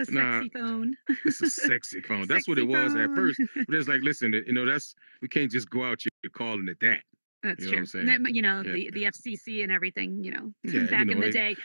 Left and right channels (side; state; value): both; inverted; correlation -1.00